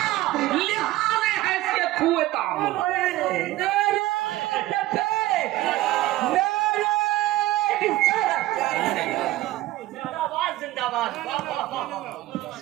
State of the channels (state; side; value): quieter; left; 16.8 dB